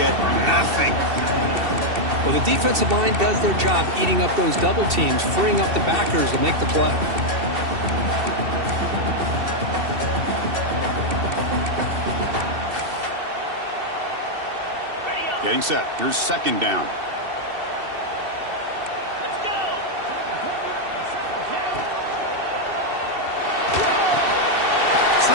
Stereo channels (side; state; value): left; late; 2.7 ms